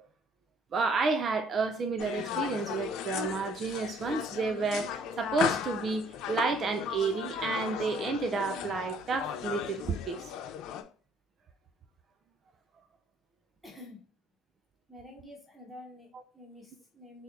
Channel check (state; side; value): normal; both; correlation 0.61